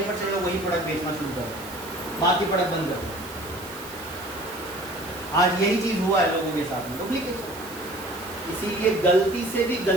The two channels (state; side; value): noise; right; hiss, 16 dB below the sound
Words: लोग वही प्रोडक्ट बेचना शुरू कर रहे, बाकी प्रोडक्ट बंद कर दो। आज यही चीज हुआ है लोगों के साथ में, डुप्लीकेशन। इसीलिए गलती से भी